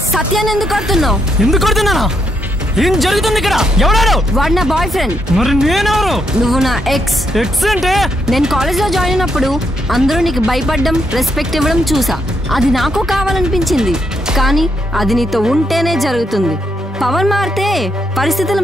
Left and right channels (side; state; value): both; normal; correlation 0.78